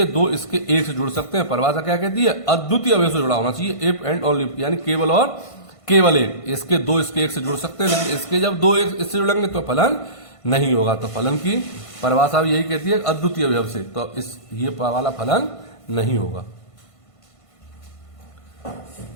दो इसके एक से जुड़ सकते हैं। परिभाषा क्या कहती है, अद्वितीय अवयव से जुड़ा होना चाहिए, इफ एंड ओनली, यानी केवल और केवल एक। इसके दो इसके एक से जुड़ सकते हैं, लेकिन इसके जब दो एक इससे जुड़ेंगे तो फलन नहीं होगा। तो फलन की परिभाषा यही कहती है अद्वितीय अवयव से, तो इस ये वाला फलन नहीं होगा।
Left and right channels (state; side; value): late; right; 1.5 ms